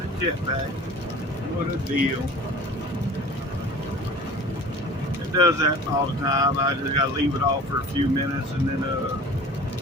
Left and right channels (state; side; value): normal; both; correlation 0.42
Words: jetpack. What a deal. It does that all the time. I just got to leave it off for a few minutes and then